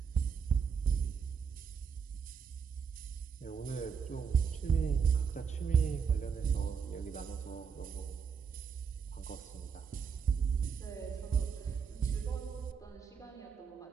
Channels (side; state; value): left; quieter; 6.3 dB